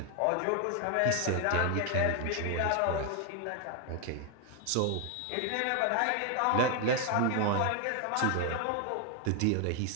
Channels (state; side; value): different; both; correlation 0.01